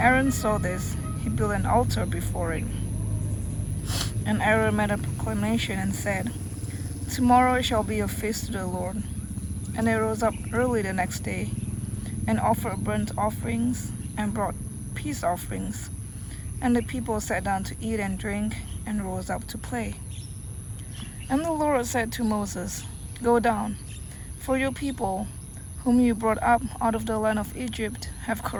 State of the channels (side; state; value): both; identical; correlation 1.00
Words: saw this, he built an altar before it. And Aaron made a proclamation and said, "Tomorrow it shall be a feast to the Lord." And they rose up early the next day and offered burnt offerings and brought peace offerings. And the people sat down to eat and drink and rose up to play. And the Lord said to Moses, "Go down, for your people, whom you brought up out of the land of Egypt, have